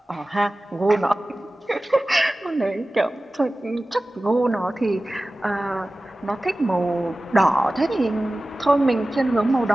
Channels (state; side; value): normal; both; correlation 0.96